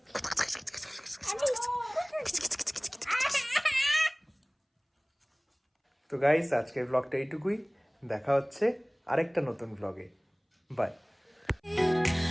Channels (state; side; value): identical; both; correlation 1.00